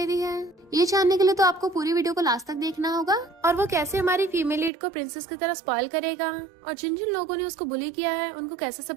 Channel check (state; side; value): drops out; left; at 4.7 s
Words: रही है, ये जानने के लिए तो आपको पूरी वीडियो को लास्ट तक देखना होगा। और वो कैसे हमारी फीमेल लीड को प्रिंसेस की तरह स्पॉइल करेगा और जिन जिन लोगों ने उसको बुली किया है उनको कैसे